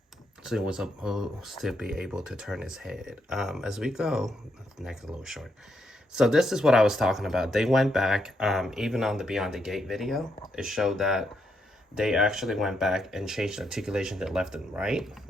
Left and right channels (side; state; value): both; normal; correlation 0.78